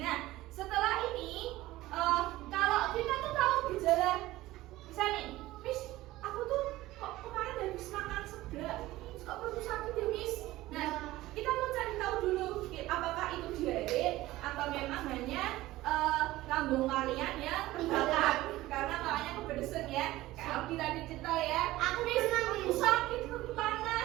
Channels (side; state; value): left; quieter; 17.1 dB